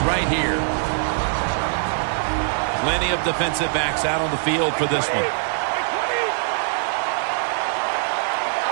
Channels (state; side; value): silent; left; digital silence